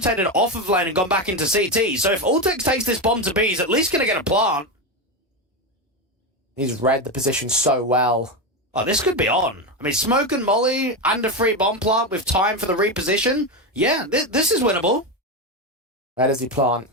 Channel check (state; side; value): normal; both; correlation 0.13